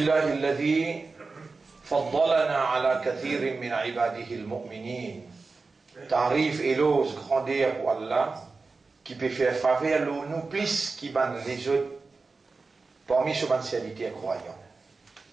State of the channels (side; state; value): left; quieter; 4.0 dB